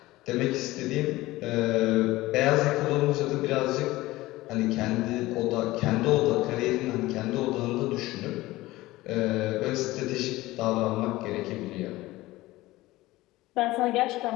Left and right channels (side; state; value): right; quieter; 18.3 dB